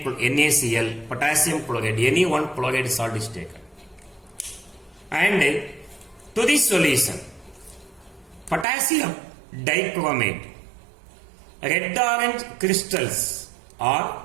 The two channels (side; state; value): left; drops out; at 8.7 s